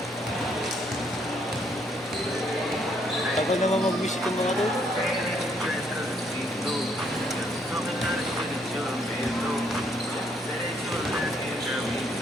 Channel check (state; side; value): normal; both; correlation 0.70